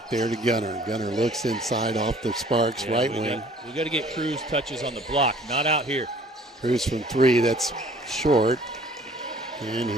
there to Gunner. Gunner looks inside off the Sparks right wing. We got to get Cruz touches on the block, not out here. Cruz from 3, that's short. And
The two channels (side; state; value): both; normal; correlation 0.54